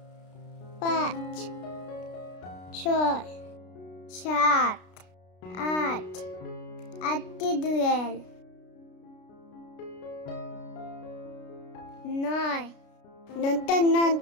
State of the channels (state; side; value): late; right; 33 ms